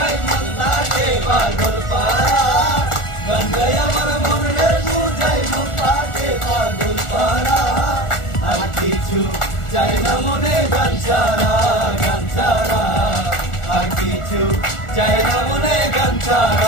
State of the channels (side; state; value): right; late; 1.4 ms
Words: মন থাকে পাগল পারা গঙ্গায় আমার মনে বুঝাই মন থাকে পাগল পারা আর কিছু চাই না মনে গান ছাড়া আর কিছু চাই না মনে গান